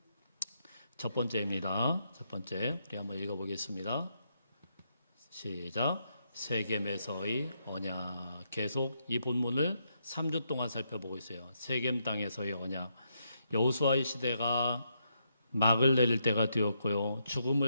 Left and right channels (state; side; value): inverted; both; correlation -0.79